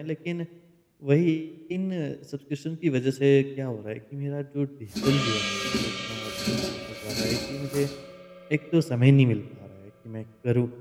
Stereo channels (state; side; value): identical; both; correlation 1.00